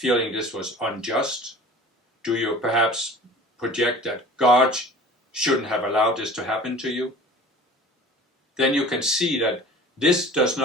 this was unjust? Do you perhaps project that God shouldn't have allowed this to happen to you? Then you can see that this does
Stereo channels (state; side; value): normal; both; correlation 0.43